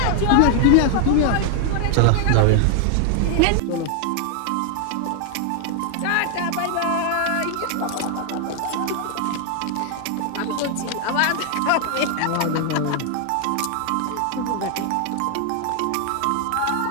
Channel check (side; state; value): both; different; correlation 0.00